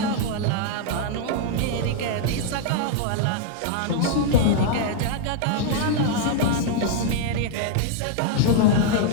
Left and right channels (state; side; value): different; both; correlation -0.01